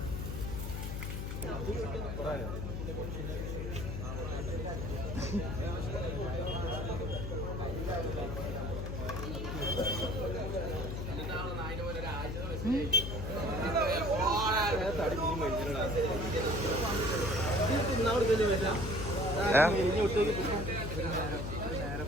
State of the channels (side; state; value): left; noise; hum, 4 dB below the sound